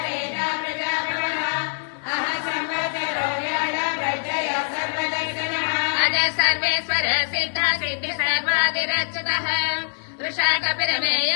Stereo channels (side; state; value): right; silent; digital silence